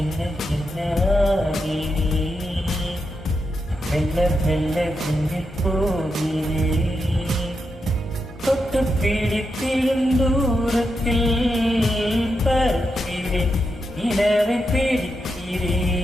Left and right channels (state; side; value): normal; both; correlation 0.85